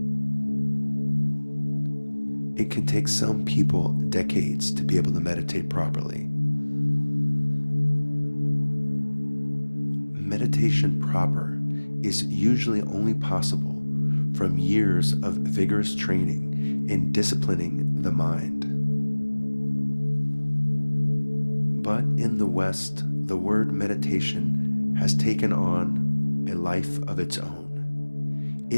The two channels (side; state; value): both; inverted; correlation -1.00